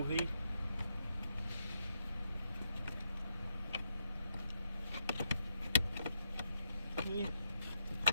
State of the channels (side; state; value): both; inverted; correlation -0.79